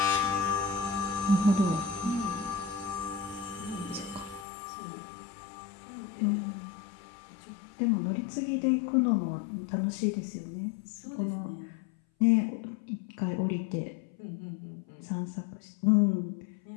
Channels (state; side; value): drops out; right; at 4.5 s